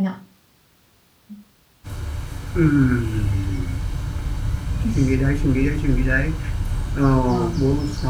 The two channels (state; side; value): identical; both; correlation 1.00